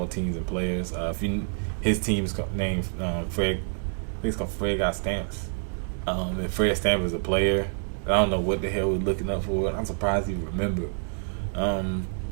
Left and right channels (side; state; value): left; silent; 60 dB below the other